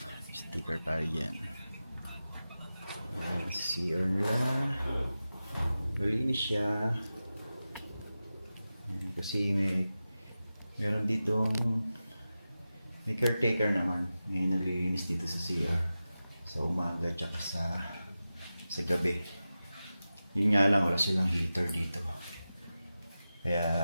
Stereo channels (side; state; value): both; inverted; correlation -0.94